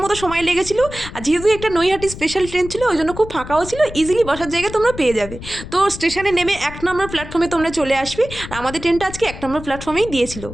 মতো সময় লেগেছিল। আর যেহেতু একটা নৈহাটি স্পেশাল ট্রেন ছিল, ওই জন্য খুব ফাঁকাও ছিল, ইজিলি বসার জায়গা তোমরা পেয়ে যাবে। তো স্টেশনে নেমে 1 নম্বর প্ল্যাটফর্মে তোমরা চলে আসবে। আর আমাদের ট্রেনটা আজকে 1 নম্বর প্ল্যাটফর্মেই দিয়েছিল।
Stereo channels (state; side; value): noise; left; rumble, 12 dB below the sound